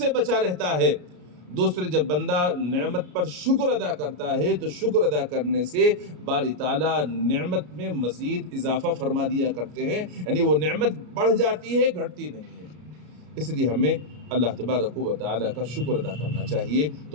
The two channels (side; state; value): left; late; 33 ms